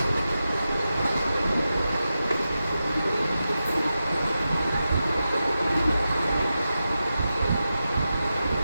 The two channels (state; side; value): inverted; both; correlation -0.91